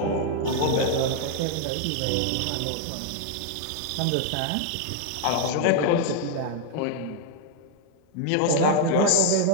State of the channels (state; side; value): different; both; correlation 0.00